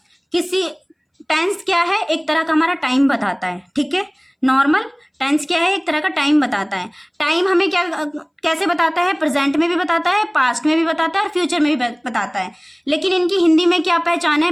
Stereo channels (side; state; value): both; identical; correlation 1.00